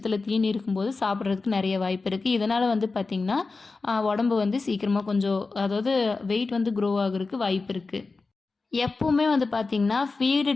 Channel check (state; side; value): quieter; right; 3.9 dB